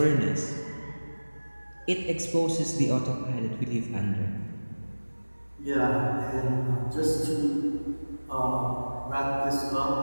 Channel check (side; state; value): both; inverted; correlation -1.00